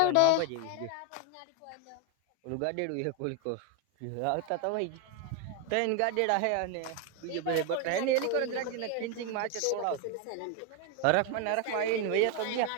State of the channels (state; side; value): different; both; correlation 0.01